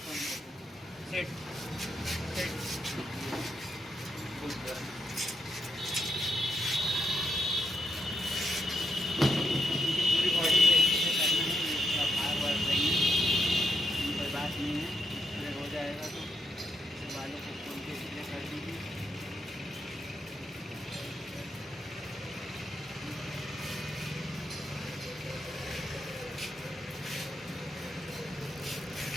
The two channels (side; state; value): both; normal; correlation 0.80